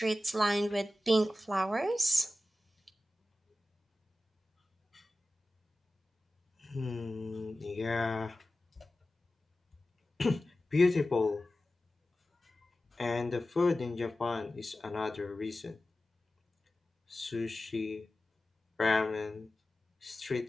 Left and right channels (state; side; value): normal; both; correlation 0.95